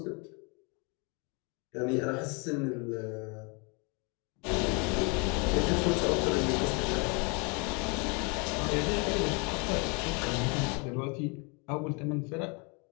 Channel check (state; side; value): quieter; right; 32.6 dB